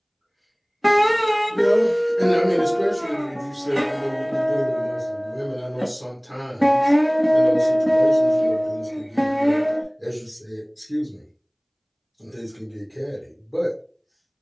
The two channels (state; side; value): identical; both; correlation 1.00